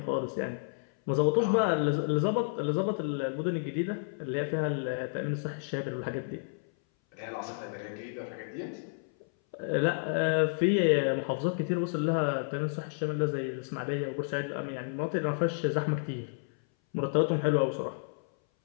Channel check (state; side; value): silent; right; 57 dB below the other